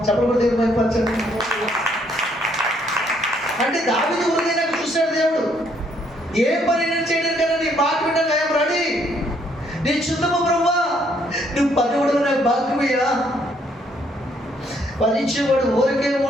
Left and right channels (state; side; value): normal; both; correlation 0.69